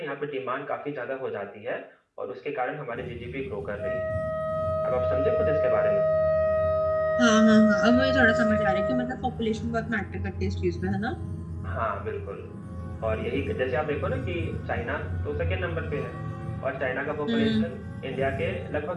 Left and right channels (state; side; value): identical; both; correlation 1.00